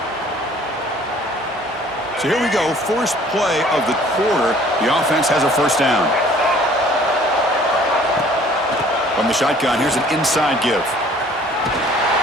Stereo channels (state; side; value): normal; both; correlation 0.54